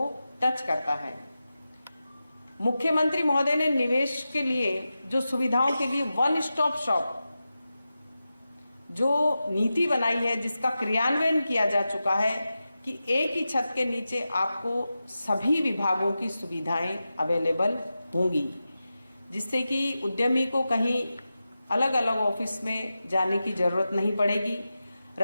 टच करता है। मुख्यमंत्री महोदय ने निवेश के लिए जो सुविधाओं के लिए वन स्टॉप शॉप जो नीति बनाई है, जिसका क्रियान्वयन किया जा चुका है कि एक ही छत के नीचे आपको सभी विभागों की सुविधाएं अवेलेबल होंगी, जिससे कि उद्यमी को कहीं अलग अलग ऑफिस में जाने की जरूरत नहीं पड़ेगी।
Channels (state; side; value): inverted; both; correlation -0.92